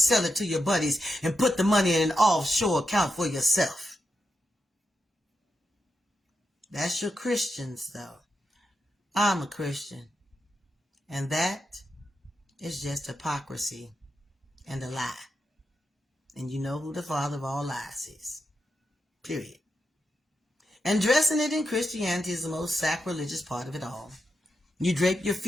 it to your buddies and put the money in an offshore account for yourself. That's your Christians, though. I'm a Christian. And that is just hypocrisy and a lie. And you know who the father of all lies is. Period. And dressing it in Christianity is the most sacrilegious part of it all. You drape your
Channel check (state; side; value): normal; both; correlation 0.86